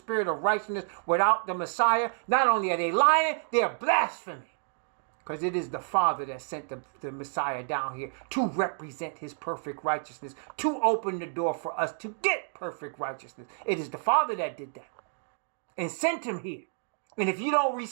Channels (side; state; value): left; silent; 58 dB below the other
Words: of righteousness without the Messiah, not only are they lying, they are blaspheming. Because it is the Father that sent the Messiah down here to represent his perfect righteousness, to open the door for us to get perfect righteousness. It is the Father that did that and sent him here. And if you don't